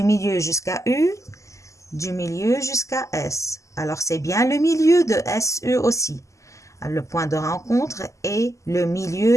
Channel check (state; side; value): late; right; 0.15 ms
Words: milieu jusqu'à U, du milieu jusqu'à S. Alors, c'est bien le milieu de SE aussi. Le point de rencontre est le